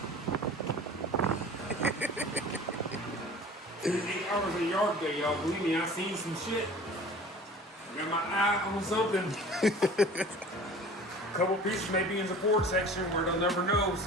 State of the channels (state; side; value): normal; both; correlation 0.43